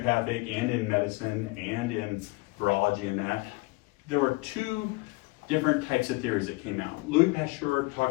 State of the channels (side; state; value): right; quieter; 24.5 dB